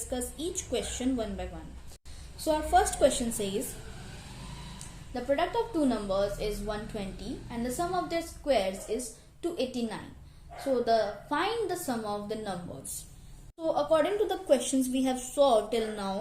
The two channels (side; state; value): both; identical; correlation 1.00